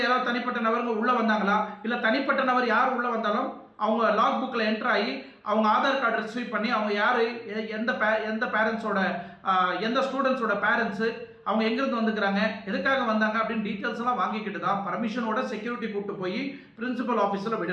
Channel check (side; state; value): both; identical; correlation 1.00